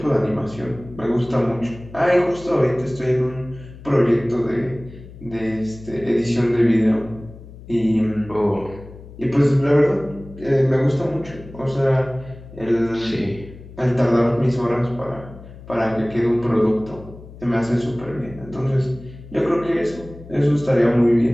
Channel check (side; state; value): left; noise; hum, 17 dB below the sound